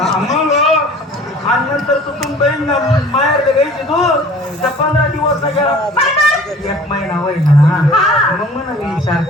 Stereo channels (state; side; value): normal; both; correlation 0.47